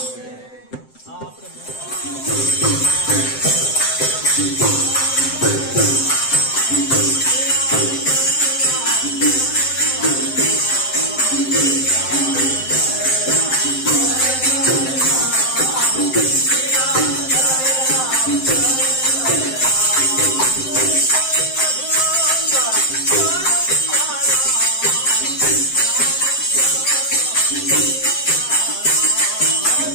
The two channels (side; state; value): right; late; 7.7 ms